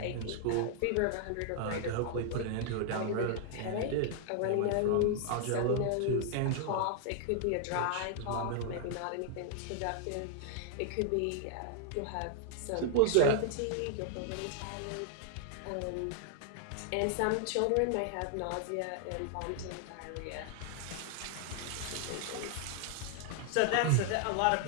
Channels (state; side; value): different; both; correlation -0.01